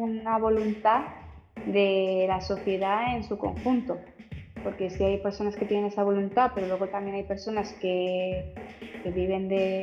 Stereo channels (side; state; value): both; identical; correlation 1.00